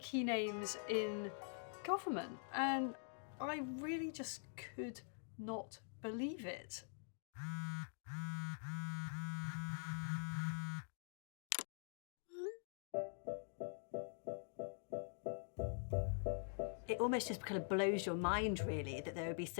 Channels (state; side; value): silent; right; digital silence